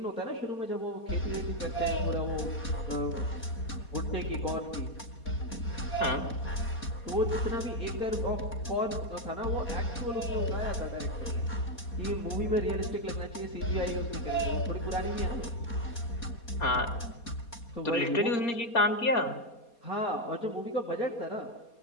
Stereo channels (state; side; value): late; right; 4.3 ms